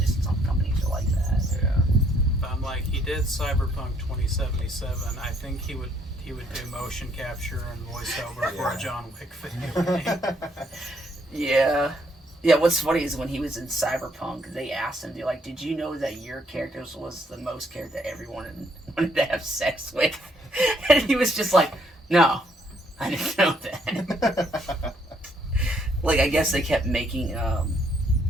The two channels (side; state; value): both; normal; correlation 0.69